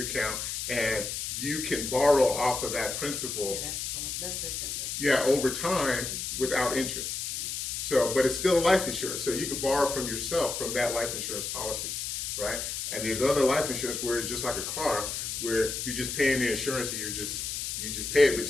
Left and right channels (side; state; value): left; noise; hiss, 4 dB below the sound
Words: and you can borrow off of that principal. That's different. Yeah, over time without interest. So, but it's still life insurance. So you can borrow from yourself from that life insurance policy, right? And there's other life insurance where it's just like a car, where you're just paying the insurance and you just pay it, but